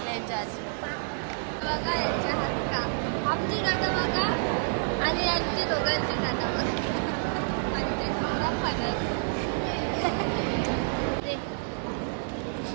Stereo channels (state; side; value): silent; left; digital silence